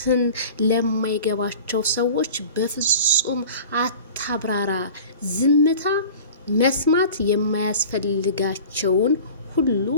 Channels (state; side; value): inverted; both; correlation -0.40